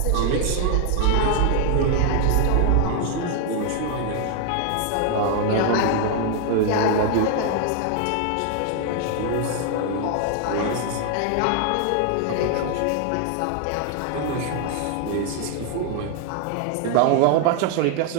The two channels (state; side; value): different; both; correlation 0.00